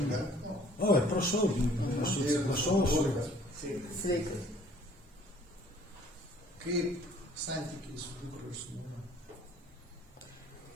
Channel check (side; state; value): both; normal; correlation 0.56